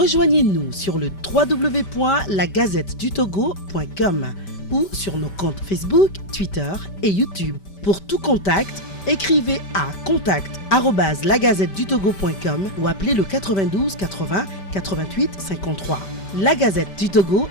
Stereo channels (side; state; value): right; late; 5.1 ms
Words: sur le www.lagazettedutogo.com ou sur nos comptes Facebook, Twitter et YouTube. Pour tout contact, écrivez à contact@lagazettedutogo.com ou appelez le 92 80 88 53. La Gazette du Togo,